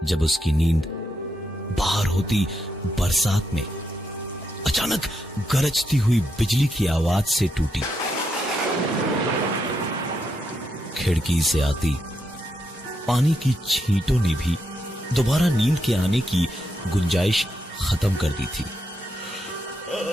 जब उसकी नींद बाहर होती बरसात में अचानक गरजती हुई बिजली की आवाज से टूटी। खिड़की से आती पानी की छींटों ने भी दोबारा नींद के आने की गुंजाइश खत्म कर दी थी।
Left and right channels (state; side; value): normal; both; correlation 0.82